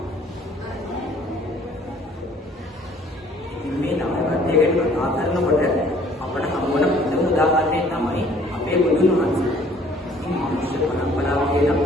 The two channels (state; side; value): normal; both; correlation 0.57